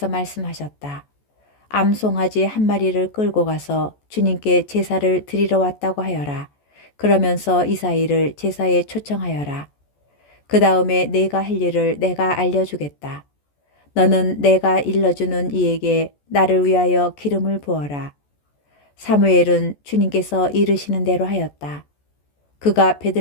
말씀하셨다. 암송아지 한 마리를 끌고 가서 주님께 제사를 드리러 왔다고 하여라. 그러면서 이사이를 제사에 초청하여라. 그 다음에 내가 할 일을 내가 알려주겠다. 너는 내가 일러주는 이에게 나를 위하여 기름을 부어라. 사무엘은 주님께서 이르시는 대로 하였다. 그가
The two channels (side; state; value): right; late; 14 ms